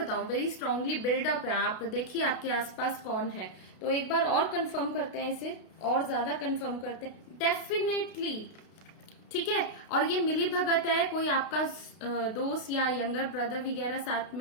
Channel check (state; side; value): late; right; 32 ms